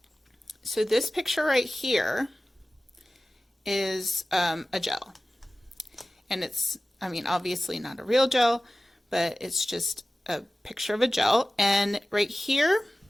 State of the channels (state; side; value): normal; both; correlation 0.96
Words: so this picture right here is a gel, and it's, obviously not a real gel, but it's just a picture of a gel. And right here